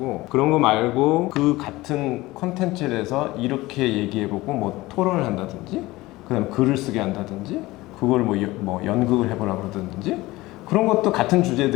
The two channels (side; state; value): right; quieter; 19.3 dB